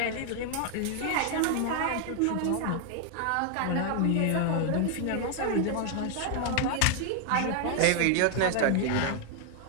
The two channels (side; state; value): both; different; correlation 0.00